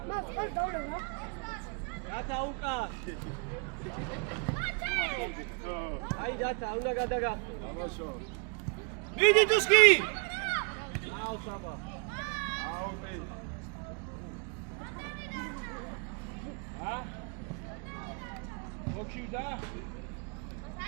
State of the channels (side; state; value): left; quieter; 35.2 dB